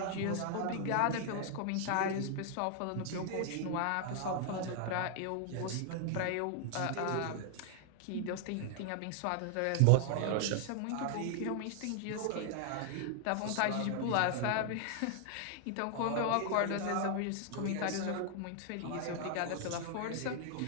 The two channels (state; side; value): different; both; correlation 0.00